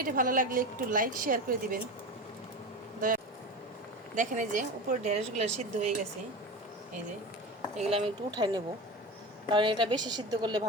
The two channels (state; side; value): normal; both; correlation 0.27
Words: ভালো লাগলে একটু লাইক শেয়ার করে দিবেন দয়া। দেখেন এই যে উপরে ঢেঁড়সগুলো সিদ্ধ হয়ে গেছে, এই যে এগুলো আমি একটু উঠাই নেব, কারণ এটা বেশি সিদ্ধ করলে